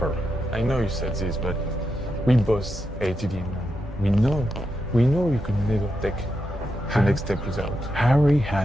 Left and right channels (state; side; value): normal; both; correlation 0.85